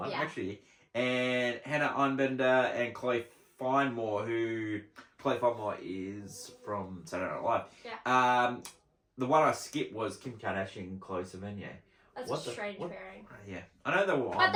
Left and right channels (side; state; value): both; identical; correlation 1.00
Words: actually. And Hannah Einbender and Chloe Finemore, who Chloe Finemore is from Saturday Night Live. Yeah. The one I skipped was Kim Kardashian and Chloe Sevigny. That's a strange pairing. Yeah, I know they were on. But